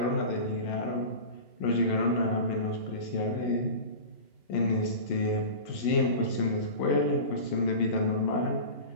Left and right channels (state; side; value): late; right; 11 ms